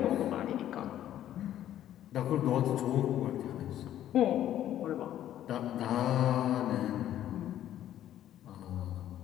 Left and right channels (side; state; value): right; quieter; 11.9 dB